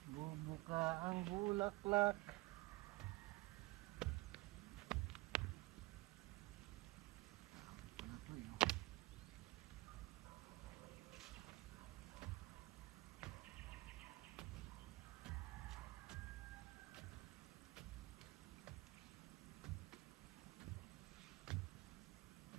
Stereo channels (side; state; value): left; quieter; 21.5 dB